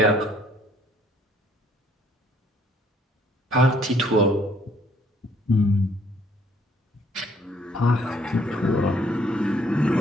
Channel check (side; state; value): both; normal; correlation 0.64